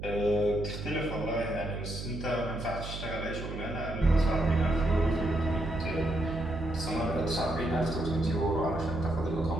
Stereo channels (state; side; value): noise; right; hum, 8 dB below the sound